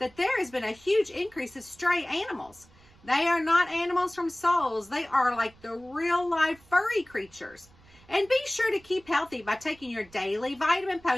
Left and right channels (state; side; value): noise; right; rumble, 27 dB below the sound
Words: there has been a huge increase of stray animals. They are not animals from Souls. They are like the real-life furry creatures. And be sure to keep healthy by taking your daily vitamin